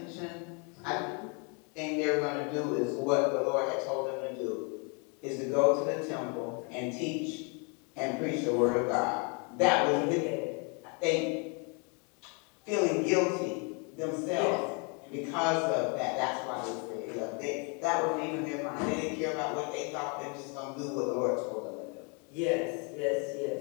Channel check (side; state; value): right; quieter; 34.6 dB